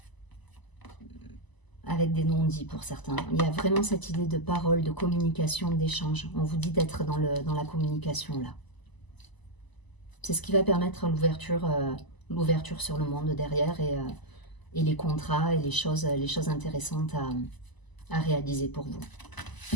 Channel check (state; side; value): late; right; 1.0 ms